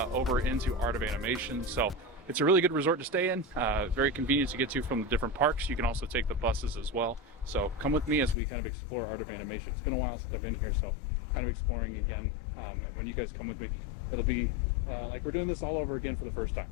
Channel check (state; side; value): drops out; right; at 8.3 s